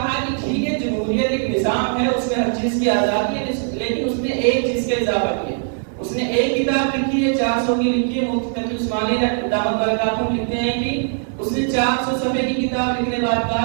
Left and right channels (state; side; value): silent; left; 59 dB below the other